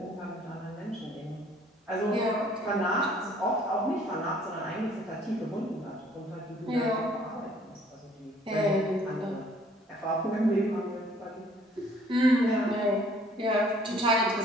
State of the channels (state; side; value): normal; both; correlation 0.58